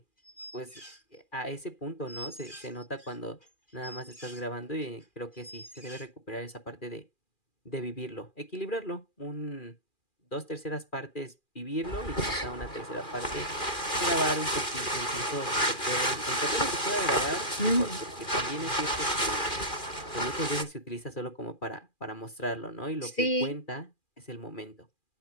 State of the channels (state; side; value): late; right; 2.4 ms